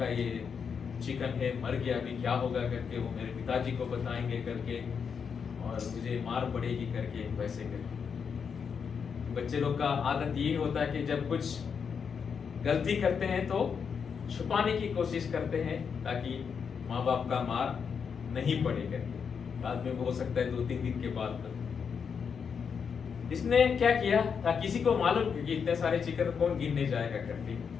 ये चिकन है, मर गया, अभी क्या होगा करके वो मेरे पिताजी को बताएंगे करके और मुझे मार पड़ेगी करके, वैसे करके। बच्चे लोग का आदत यही होता है कि जब कुछ गलती करते हैं तो छुपाने की कोशिश करते हैं ताकि माँ बाप का मार नहीं पड़े करके। बाद में वो हो सकता है 2-3 दिन के बाद। इसने क्या किया था, किसी को मालूम कि इतने सारे चिकन कौन गिनने जाएगा करके।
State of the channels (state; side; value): quieter; right; 6.5 dB